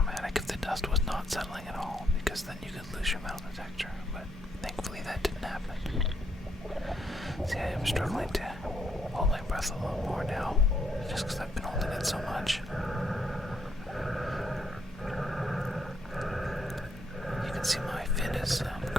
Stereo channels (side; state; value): both; normal; correlation 0.74